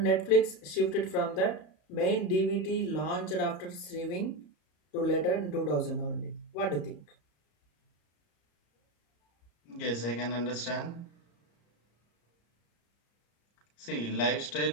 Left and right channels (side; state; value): right; late; 34 ms